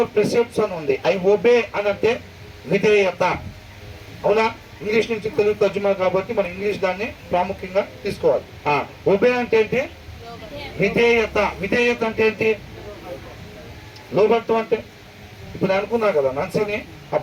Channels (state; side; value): identical; both; correlation 1.00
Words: precepts అని ఉంది. ఐ ఒబే అని అంటే విధేయత. అవునా? ఇంగ్లీష్ నుంచి తెలుగు తర్జుమా కాబట్టి మనం ఇంగ్లీష్ దాన్ని ప్రాముఖ్యంగా తీసుకోవాలి. ఒబే అంటే ఏంటి? విధేయత. విధేయత అంటే ఏంటి? లోబడటం అంటే ఇప్పుడు నేను అనుకున్నా కదా, నన్సిని ఆ